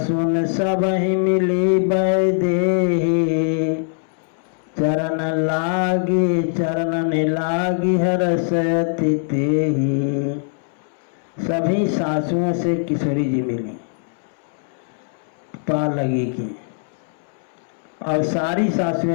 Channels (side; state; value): right; silent; 65 dB below the other